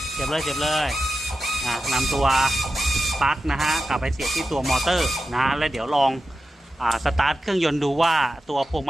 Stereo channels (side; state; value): both; normal; correlation 0.91